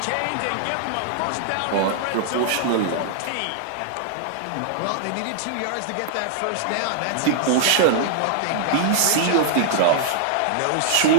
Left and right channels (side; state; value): both; different; correlation -0.01